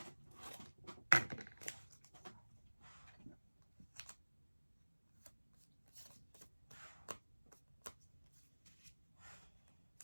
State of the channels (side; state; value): both; inverted; correlation -1.00